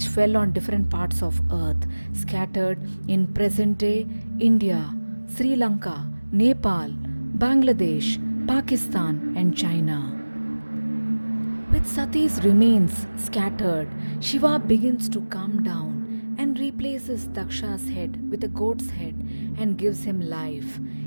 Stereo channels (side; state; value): both; inverted; correlation -1.00